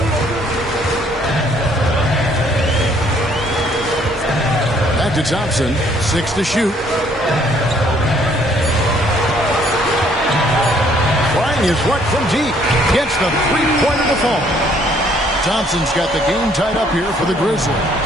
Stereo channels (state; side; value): normal; both; correlation 0.63